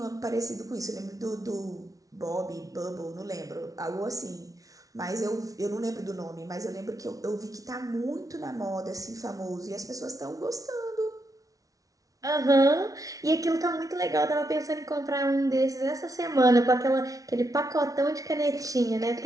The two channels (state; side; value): late; left; 0.17 ms